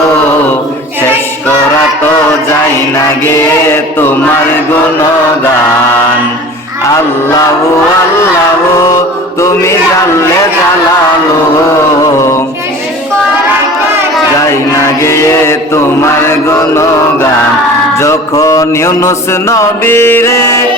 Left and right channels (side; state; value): both; normal; correlation 0.41